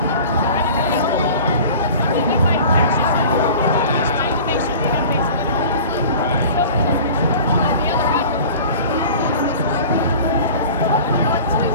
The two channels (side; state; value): both; inverted; correlation -0.40